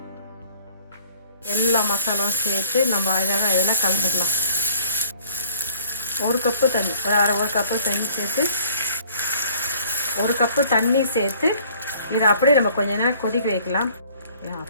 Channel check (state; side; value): inverted; both; correlation -0.58